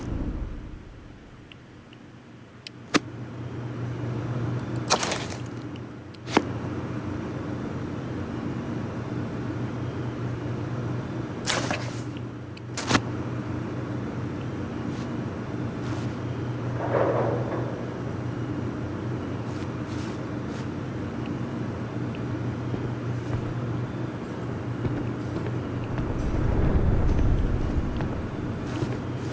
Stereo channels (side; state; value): both; identical; correlation 1.00